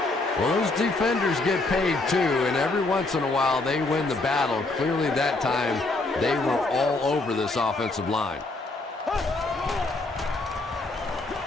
Well, those defenders get paid too, and every once in a while they win the battle. Clearly that time they were all over this offensive line.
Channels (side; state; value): right; quieter; 3.1 dB